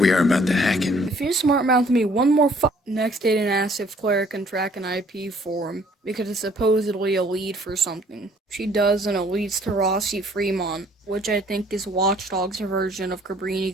are about to hack it. If you smart mouth me one more Next, Aiden asks if Claire can track an IP for him, because it's supposedly a lead for something. She does, and it leads to Rossi Fremont, which I think is Watch Dogs' version of Cabrini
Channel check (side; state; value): both; normal; correlation 0.59